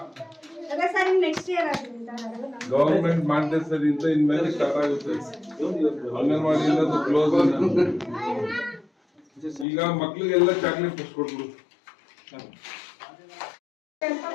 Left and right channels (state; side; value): drops out; right; at 9.7 s